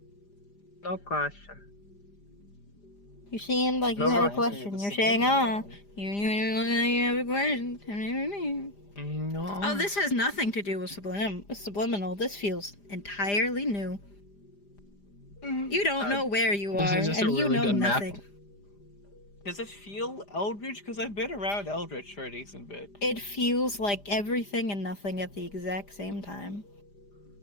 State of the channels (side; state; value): right; late; 5.0 ms